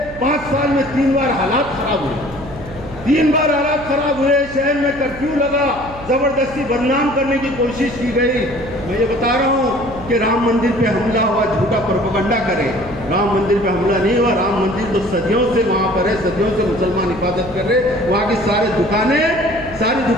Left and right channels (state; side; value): noise; right; hum, 17 dB below the sound